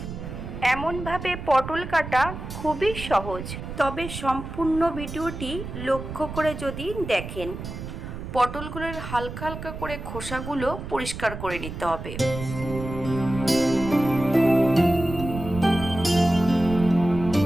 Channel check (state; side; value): noise; right; rumble, 9 dB below the sound